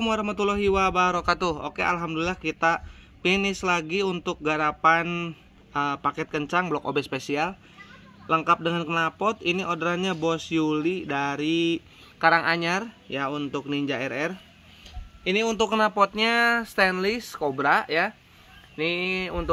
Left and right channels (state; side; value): identical; both; correlation 1.00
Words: wabarakatuh. Oke, alhamdulillah kita finish lagi untuk garapan paket kencang blok OB spesial, lengkap dengan knalpot. Ini orderannya Bos Yuli dari Karanganyar ya, untuk Ninja RR. Ini untuk knalpotnya stainless Cobra ya. Ini